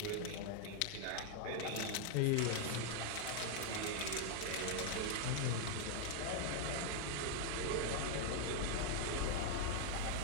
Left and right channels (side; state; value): both; different; correlation 0.00